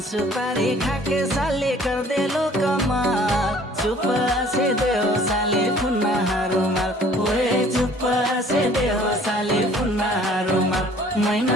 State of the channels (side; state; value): both; normal; correlation 0.54